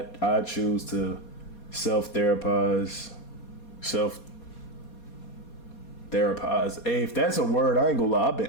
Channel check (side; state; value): right; late; 4.2 ms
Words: choose to self-therapize. Hey, if that's a word, I ain't gonna lie.